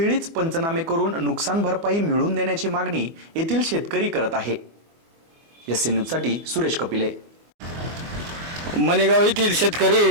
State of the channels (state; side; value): late; left; 24 ms